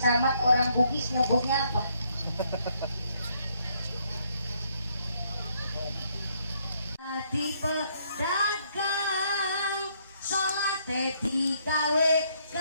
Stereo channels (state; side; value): inverted; both; correlation -0.70